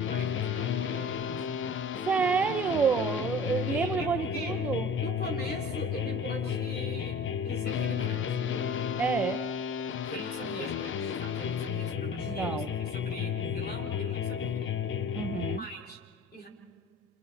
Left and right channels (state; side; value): normal; both; correlation 0.42